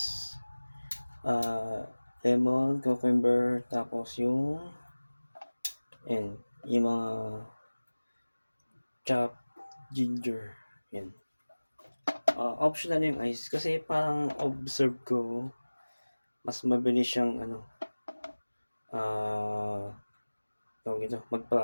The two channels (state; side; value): inverted; both; correlation -1.00